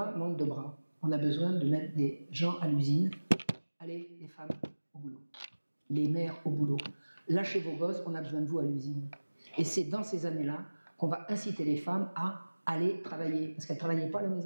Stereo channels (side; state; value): both; inverted; correlation -1.00